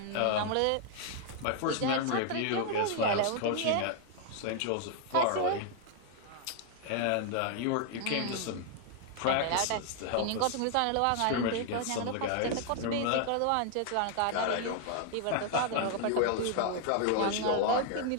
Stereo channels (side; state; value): both; different; correlation 0.00